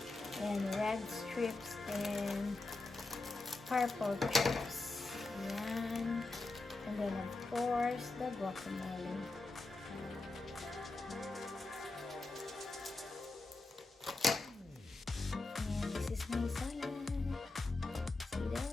and red strips and purple chips. Yan. And then of course the guacamole. My salad. See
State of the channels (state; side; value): quieter; right; 3.2 dB